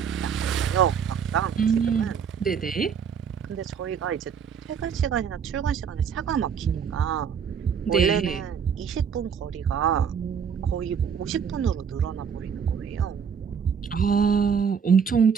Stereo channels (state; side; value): quieter; left; 7.1 dB